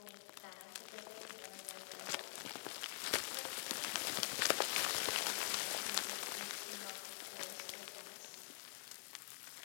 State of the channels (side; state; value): right; silent; digital silence